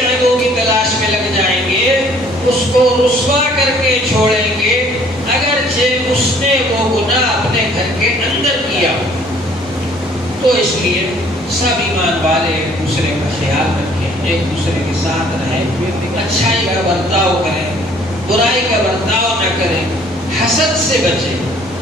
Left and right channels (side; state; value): both; normal; correlation 0.58